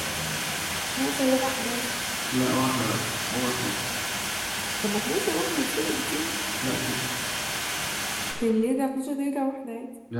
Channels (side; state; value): both; identical; correlation 1.00